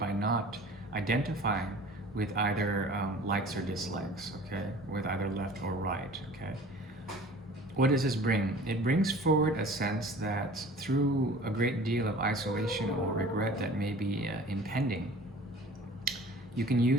not identifying with either likes or dislikes, okay? With either left or right, okay? What does this bring? It brings forward a sense that through a great deal of isolation or regret that may be impending, you can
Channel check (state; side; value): normal; both; correlation 0.45